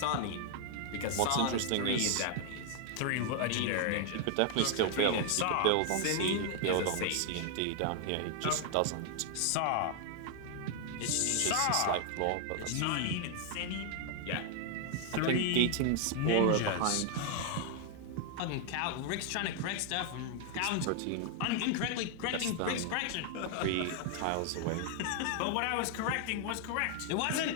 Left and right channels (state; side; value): different; both; correlation 0.00